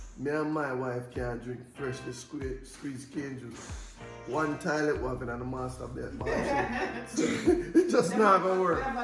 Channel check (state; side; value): identical; both; correlation 1.00